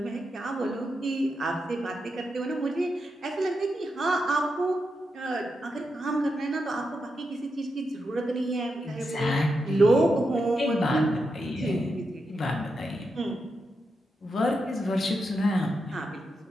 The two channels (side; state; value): both; normal; correlation 0.86